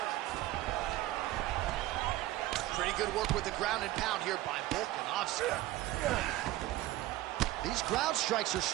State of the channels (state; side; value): quieter; left; 16.1 dB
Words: Pretty good work with the ground and pound here by Volkanovski. These ground strikes are